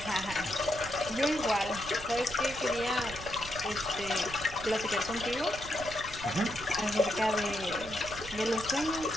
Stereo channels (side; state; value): right; noise; rumble, 13 dB below the sound